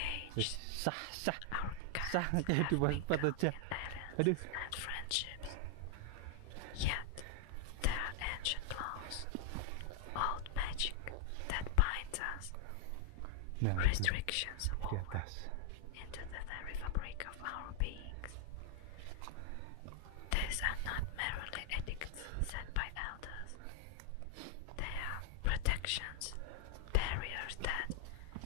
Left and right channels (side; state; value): both; different; correlation 0.00